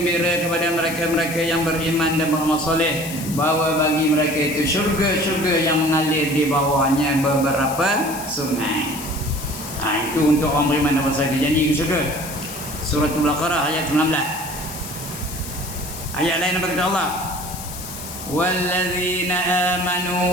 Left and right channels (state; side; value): noise; left; hiss, 11 dB below the sound